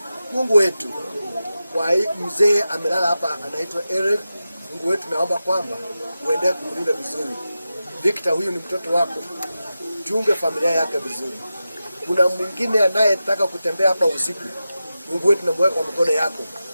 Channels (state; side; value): inverted; both; correlation -0.92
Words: Mungu wetu, kwa mzee amelala hapa anaitwa Eric. Mungu wetu, naomba kwamba uendelee kumlinda vizuri. Victor, huyu ni mtoto wako, chunge familia yake vizuri. Kuna mwingine anayetaka kutembea hapa usiku, Mungu wetu, namweka kwa mkono yako,